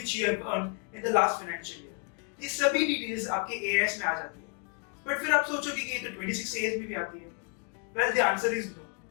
you have earned in the last financial year. ये सभी details आपके AIS में आ जाती है। But फिर आप सोचोगे कि ये तो 26 AS में भी आती है। Well, the answer is no.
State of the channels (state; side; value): quieter; right; 37.9 dB